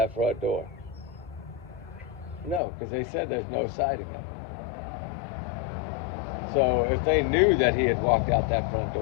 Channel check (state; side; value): drops out; right; at 2.6 s